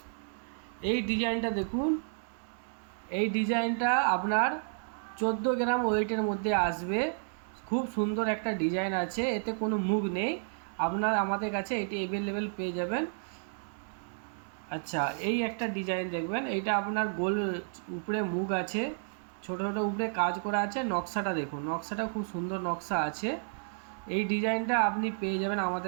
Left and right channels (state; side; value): silent; left; digital silence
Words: এই ডিজাইনটা দেখুন, এই ডিজাইনটা আপনার 14 গ্রাম ওয়েটের মধ্যে আসবে। খুব সুন্দর একটা ডিজাইন আছে, এতে কোনো মুখ নেই। আপনার আমাদের কাছে এটি অ্যাভেলেবেল পেয়ে যাবেন। আচ্ছা, এই একটা ডিজাইন দেখবেন, এইটা আপনার গোল উপরে মুখ আছে, ছোট ছোট উপরে কাজ করা আছে। নকশাটা দেখুন, নকশাটা খুব সুন্দর নকশা আছে। এই ডিজাইনটা আপনি পেয়ে যাবেন